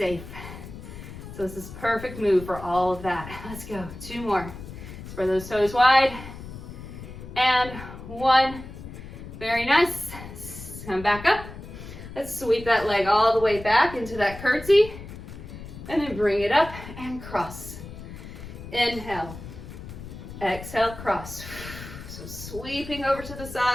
So this is perfect move for all of that. Let's go. 2 more. Spread those toes wide. And 1. Very nice. Come back up. Let's sweep that leg all the way back into that curtsy. And then bring it up and cross. Inhale. Exhale, cross. So sweeping over to the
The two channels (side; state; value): left; noise; rumble, 12 dB below the sound